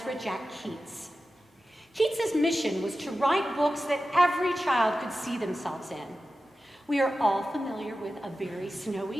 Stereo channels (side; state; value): both; normal; correlation 0.93